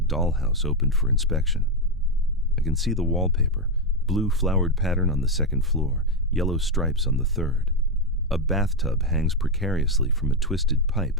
opened for inspection. I can see the wallpaper, blue flowered pattern on the second floor, yellow stripes on the third. A bathtub hangs precariously from a twisted pipe,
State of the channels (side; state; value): both; normal; correlation 0.06